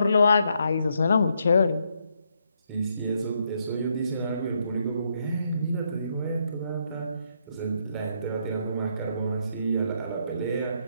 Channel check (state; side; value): inverted; both; correlation -0.76